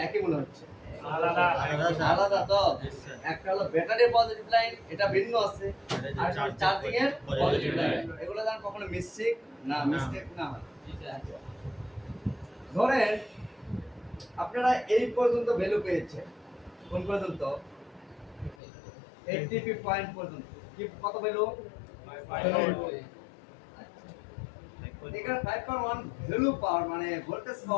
একই মনে হচ্ছে? আলাদা তো। একটা হলো ব্যাটারির পজিটিভ লাইন, এটা ভিন্ন আছে। আর চার্জিং এর পজিটিভ লাইন, এগুলো যেন কখনো মিস্টেক না হয়। ধরেন আপনারা এই পর্যন্ত ভ্যালু পেয়েছেন, কোন পর্যন্ত? 80 পয়েন্ট পর্যন্ত। কি কত ভ্যালু? এখানে 5.1 ভ্যালু পাওয়ার মানে ভোল্টেজ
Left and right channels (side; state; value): right; drops out; at 18.6 s